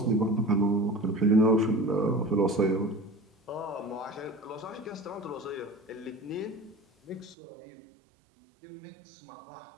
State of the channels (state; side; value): drops out; left; at 7.4 s